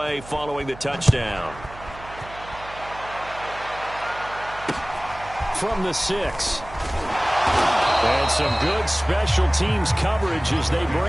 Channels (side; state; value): right; noise; hum, 17 dB below the sound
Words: following the touchdown. From the 6. And some good special teams coverage as they